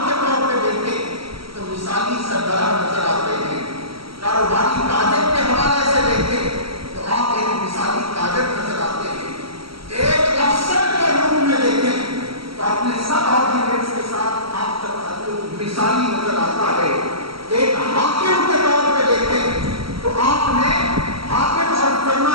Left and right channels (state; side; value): late; left; 0.75 ms